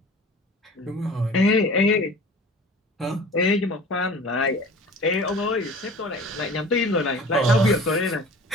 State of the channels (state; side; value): normal; both; correlation 0.42